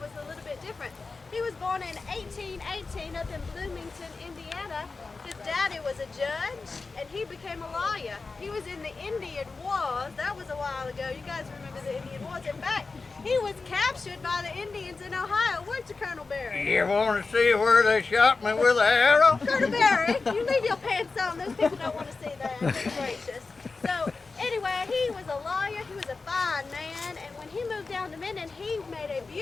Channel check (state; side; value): quieter; right; 4.1 dB